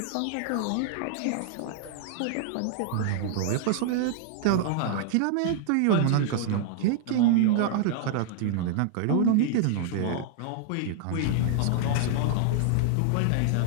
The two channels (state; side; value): different; both; correlation 0.00